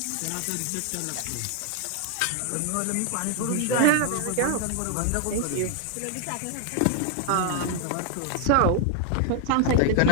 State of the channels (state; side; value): different; both; correlation 0.00